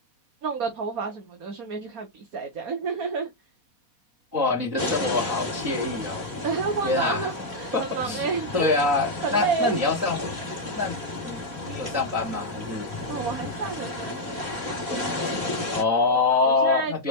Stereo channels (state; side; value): late; left; 4.2 ms